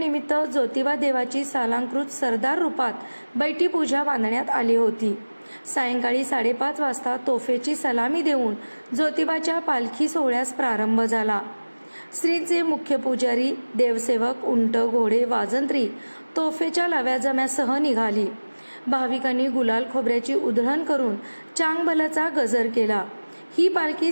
ज्योतिबा देवाची सालंकृत सरदार रूपात बैठी पूजा बांधण्यात आली होती। सायंकाळी 5:30 वाजता तोफेची सलामी देऊन ज्योतिबाच्या पालखी सोहळ्यास प्रारंभ झाला। श्रींचे मुख्य पुजारी, देवसेवक, उंट, घोडे, वाजंत्री तोफेच्या लव्याजम्यासह निघाली। भाविकांनी गुलाल खोबऱ्याची उधळण करून चांगभलचा गजर केला। ही पालखी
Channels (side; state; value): both; inverted; correlation -1.00